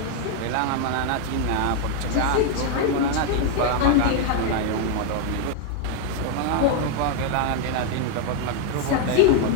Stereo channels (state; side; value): different; both; correlation 0.00